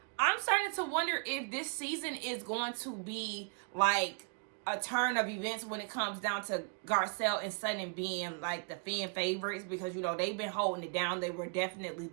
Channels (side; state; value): left; quieter; 39.1 dB